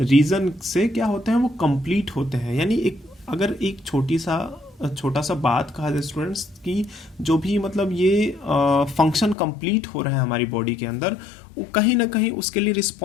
से क्या होते हैं, वो कंप्लीट होते हैं। यानी एक अगर एक छोटा सा बात कहा जाए स्टूडेंट्स की जो भी मतलब ये फंक्शन कंप्लीट हो रहे हैं हमारी बॉडी के अंदर, वो कहीं ना कहीं उसके लिए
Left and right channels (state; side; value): drops out; right; at 9.3 s